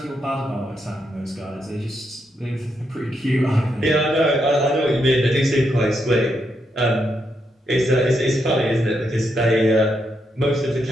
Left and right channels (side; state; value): both; normal; correlation 0.80